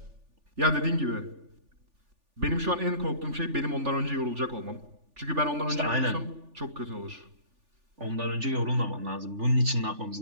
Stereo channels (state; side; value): late; left; 3.4 ms